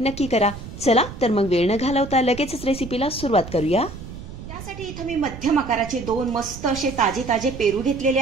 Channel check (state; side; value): noise; right; rumble, 12 dB below the sound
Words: नक्की करा. चला तर मग वेळ न घालवता लगेचच रेसिपीला सुरुवात करूया. त्यासाठी इथं मी मध्यम आकाराचे 2 मस्त असे ताजे पेरू घेतलेले